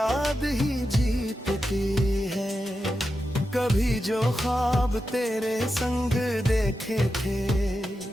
ही जीतती है। कभी जो ख्वाब तेरे संग देखे थे,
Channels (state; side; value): normal; both; correlation 0.89